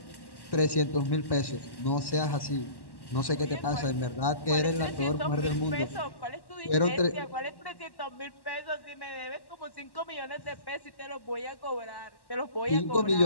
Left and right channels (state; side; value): late; right; 1.1 ms